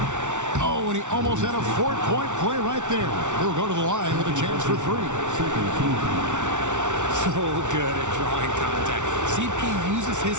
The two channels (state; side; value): late; left; 0.85 ms